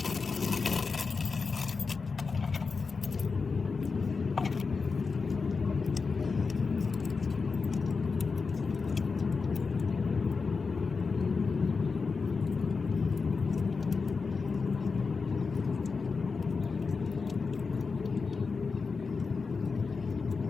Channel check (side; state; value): right; quieter; 4.7 dB